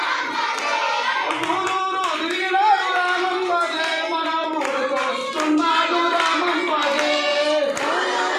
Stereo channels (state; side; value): identical; both; correlation 1.00